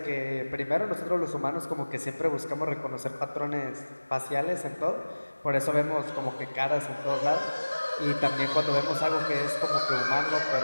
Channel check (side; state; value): both; inverted; correlation -1.00